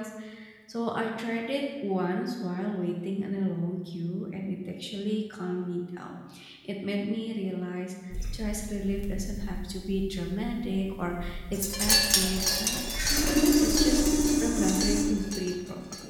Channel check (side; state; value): both; identical; correlation 1.00